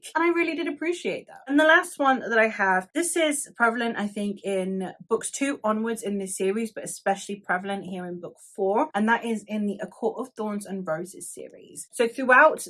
And I really did appreciate that. And the last one that I have, this is prevalent I think in books 2 onwards in this series, but especially prevalent here in book 4, and that is in the A Court of Thorns and Roses series. So throughout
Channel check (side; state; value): both; identical; correlation 1.00